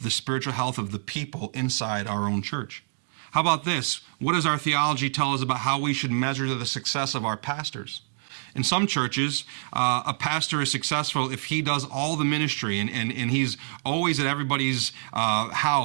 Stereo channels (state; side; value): silent; left; digital silence